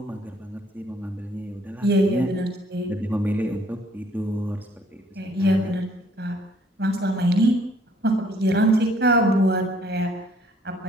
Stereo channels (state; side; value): normal; both; correlation 0.62